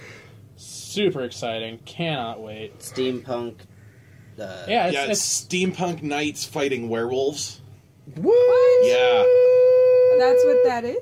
Super exciting. Cannot wait. Steampunk. It's steampunk knights fighting werewolves. What? Yeah. That's what that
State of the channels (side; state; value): both; identical; correlation 1.00